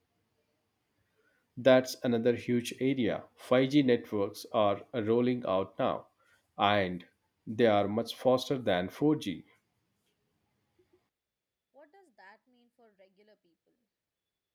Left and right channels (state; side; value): identical; both; correlation 1.00